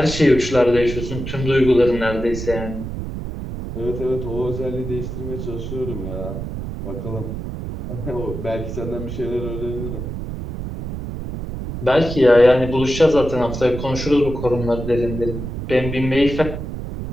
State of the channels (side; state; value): right; noise; rumble, 7 dB below the sound